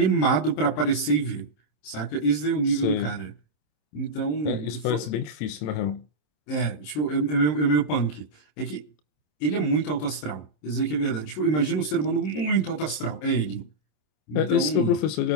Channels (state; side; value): late; right; 26 ms